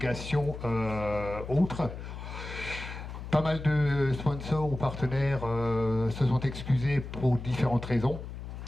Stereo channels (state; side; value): noise; left; hum, 9 dB below the sound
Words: autre. Pas mal de sponsors ou partenaires se sont excusés pour différentes raisons.